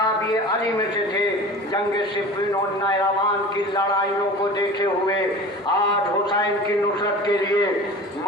علی میں سے تھے۔ جنگ صفین اور نیروان کی لڑائیوں کو دیکھے ہوئے آج حسین کی نصرت کے لیے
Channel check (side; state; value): both; normal; correlation 0.37